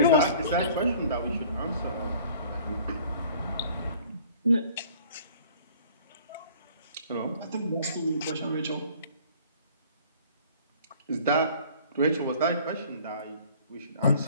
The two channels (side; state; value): both; inverted; correlation -0.51